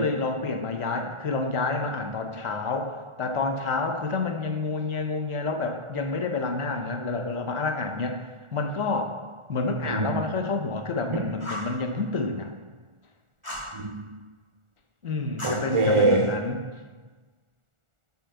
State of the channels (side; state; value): left; late; 1.4 ms